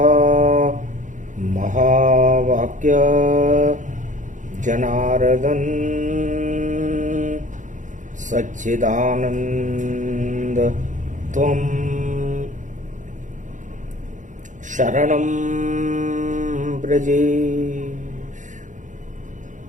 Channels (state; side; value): late; left; 0.36 ms